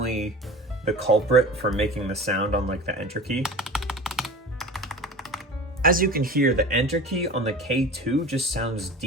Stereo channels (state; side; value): normal; both; correlation 0.35